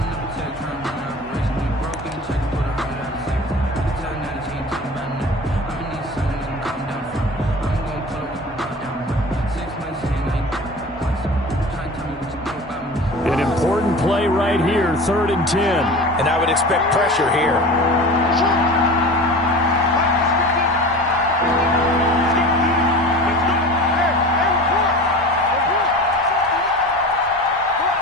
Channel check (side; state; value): both; normal; correlation 0.36